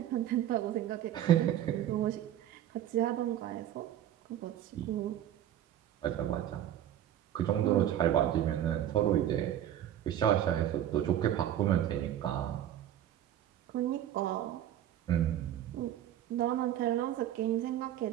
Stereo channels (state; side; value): quieter; left; 11.3 dB